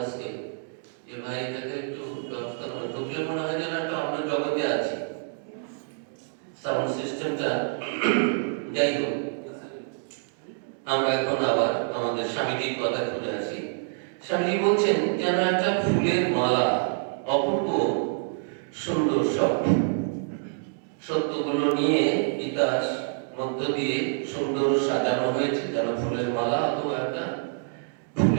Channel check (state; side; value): silent; left; digital silence